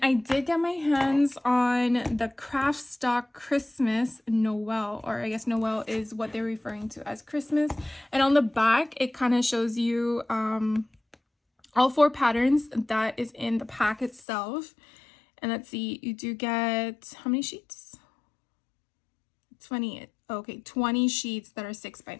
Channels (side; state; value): right; drops out; at 14.2 s